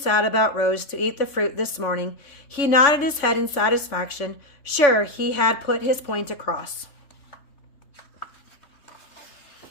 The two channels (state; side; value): late; right; 3.5 ms